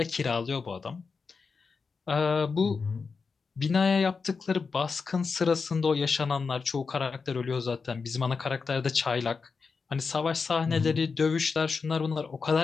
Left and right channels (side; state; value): right; quieter; 5.0 dB